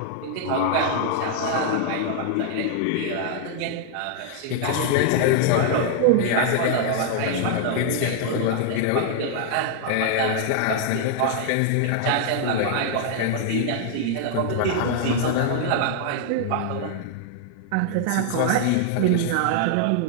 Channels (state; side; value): different; both; correlation 0.00